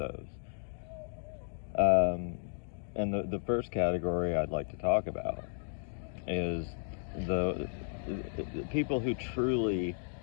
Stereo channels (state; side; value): silent; right; digital silence